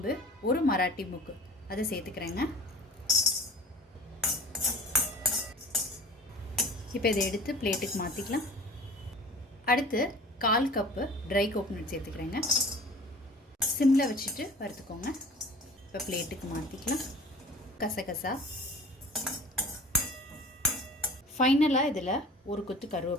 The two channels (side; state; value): both; normal; correlation 0.43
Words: 1 மராட்டி முக்கு அதை சேர்த்துக்கிறேங்க. இப்போ இதை எடுத்து பிளேட்டுக்கு மாற்றிக்கலாம். அடுத்து 1/4 கப்பு ட்ரை கோகோனட் சேர்த்துக்கிறேங்க. சிம்மில் வச்சுட்டு வறுத்துக்கோங்க. இப்போ பிளேட்டுக்கு மாற்றிக்கலாம். கசகசா, ஃபைனலாக இதில் ஒரு கொத்து